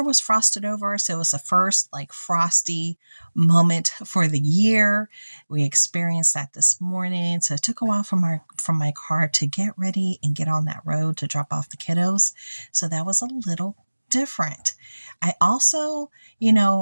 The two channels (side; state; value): both; inverted; correlation -1.00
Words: was frosted over, so it was the first frosty moment for the year. We experienced that this morning. So it took a while from my car to get ready and get on that road to drop off the kiddos. So that was a little different. I also,